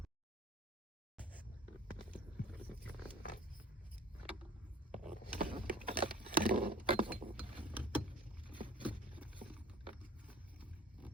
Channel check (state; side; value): normal; both; correlation 0.46